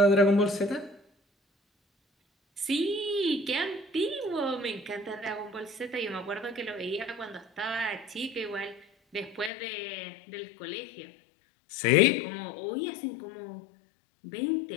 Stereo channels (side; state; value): right; drops out; at 9.5 s